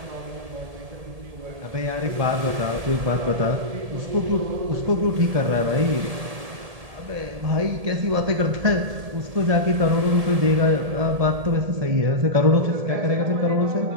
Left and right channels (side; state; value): left; late; 1.7 ms